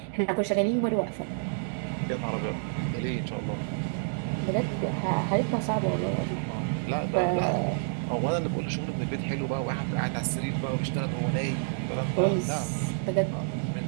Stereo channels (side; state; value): left; silent; 57 dB below the other